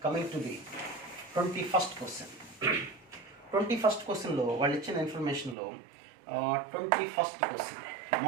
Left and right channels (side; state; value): left; drops out; at 5.6 s